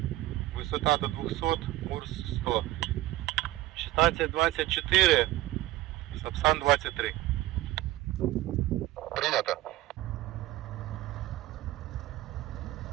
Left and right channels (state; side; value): quieter; left; 16.7 dB